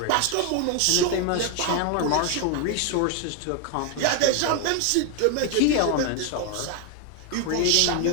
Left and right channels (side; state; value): both; different; correlation 0.01